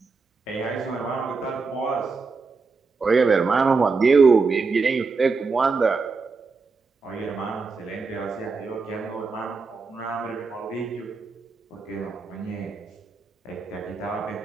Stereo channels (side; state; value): left; quieter; 4.4 dB